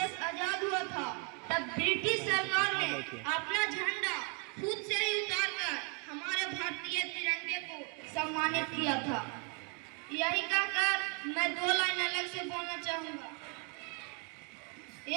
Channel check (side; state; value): left; quieter; 34.9 dB